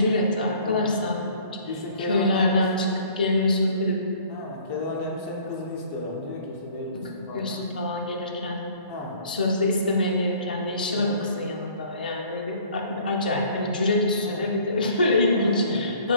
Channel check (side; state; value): both; inverted; correlation -0.54